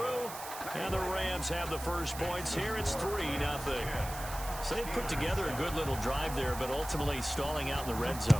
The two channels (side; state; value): right; noise; hiss, 11 dB below the sound